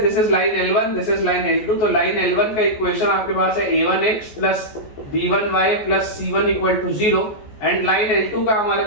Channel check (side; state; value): right; late; 14 ms